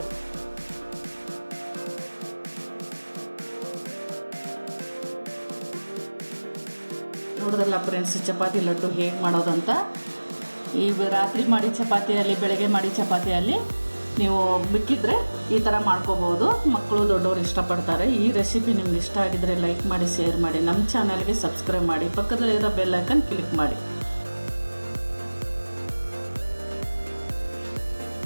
ನೋಡಿದ್ರಲ್ಲ ಫ್ರೆಂಡ್ಸ್, ಚಪಾತಿ ಲಡ್ಡು ಹೇಗೆ ಮಾಡೋದಂತ. ಈ ರಾತ್ರಿ ಮಾಡಿ ಚಪಾತಿಯಲ್ಲಿ, ಬೆಳಗ್ಗೆ ಮಾಡಿ ಚಪಾತಿಯಲ್ಲಿ ನೀವು ಮಿಕ್ಕಿದ್ರೆ ಈ ಥರ ಮಾಡ್ಕೋಬೋದು. ಮಕ್ಕಳು ದೊಡ್ಡವರು ಇಷ್ಟಪಡ್ತಾರೆ. ಈ ರೆಸಿಪಿ ನಿಮ್ಗೆ ಇಷ್ಟ ಆಗಿದ್ರೆ ಲೈಕ್ ಮಾಡಿ, ಶೇರ್ ಮಾಡಿ, ನಮ್ಮ ಚಾನಲ್ಗೆ ಸಬ್ಸ್ಕ್ರೈಬ್ ಮಾಡಿ, ಪಕ್ಕದಲ್ಲಿರೋ ಬೆಲ್ ಐಕನ್ ಕ್ಲಿಕ್ ಮಾಡಿ.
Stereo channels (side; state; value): both; inverted; correlation -1.00